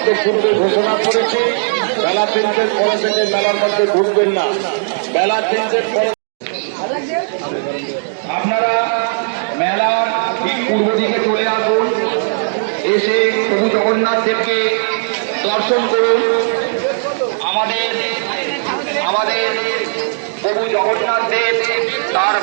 তো পূর্বে ঘোষণা করেছি বেলা 3টের পরে থেকে মেলার মধ্যে ঢুকবেন না। বেলা 3টের পরে আপনারা মেলার ঠিক পূর্ব দিকে চলে আসুন, এসে প্রভু জগন্নাথ দেবকে দর্শন করুন। আমাদের প্রভু জগন্নাথ দেব তার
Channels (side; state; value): left; silent; digital silence